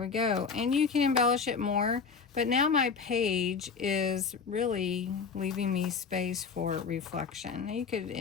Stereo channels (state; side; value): quieter; right; 5.6 dB